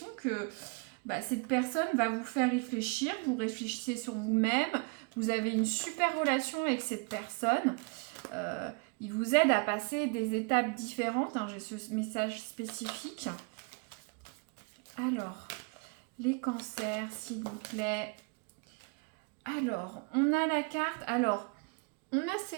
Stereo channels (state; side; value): quieter; left; 33.5 dB